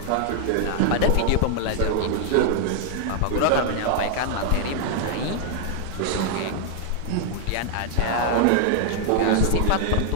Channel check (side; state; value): both; different; correlation 0.00